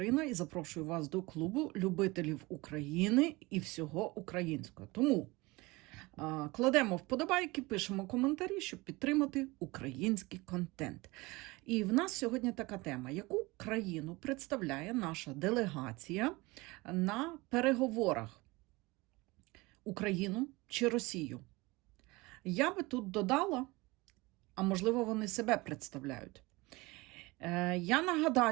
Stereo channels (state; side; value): quieter; left; 22.9 dB